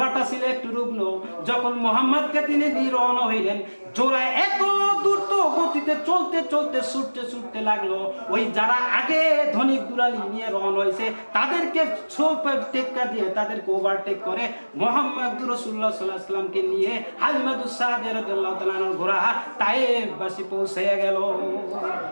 ছিল একটু রুগ্ন। যখন মুহাম্মদকে তিনি নিয়ে রওনা হইলেন, জোড়ায় এত দ্রুত গতিতে চলতে ছুটতে লাগলো। ওই যারা আগে ধনিক দুলালি নিয়ে রওনা হয়েছে তাদেরকে টেক্কা দিয়ে তাদেরকে ওভারটেক করে মুহাম্মদ রাসূলুল্লাহ সাল্লাল্লাহু আলাইহি সাল্লামকে নিয়ে হালিমাতুস সাদিয়া রাদিয়াল্লাহু তাআলার ঘোড়া তায়েফবাসী পৌঁছে গেল।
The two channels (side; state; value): both; inverted; correlation -1.00